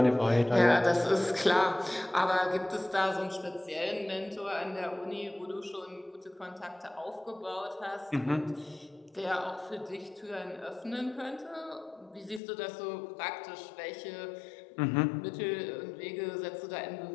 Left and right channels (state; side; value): drops out; right; at 12.4 s